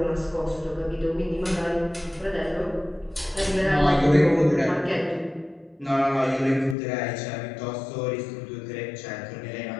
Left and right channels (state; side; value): drops out; right; at 6.8 s